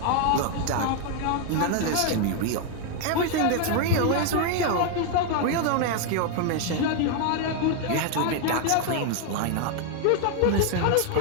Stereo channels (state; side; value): different; both; correlation 0.01